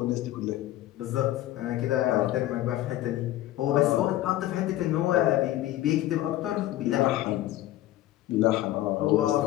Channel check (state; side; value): quieter; right; 14.6 dB